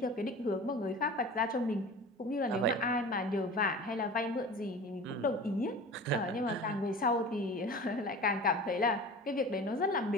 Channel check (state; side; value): normal; both; correlation 0.37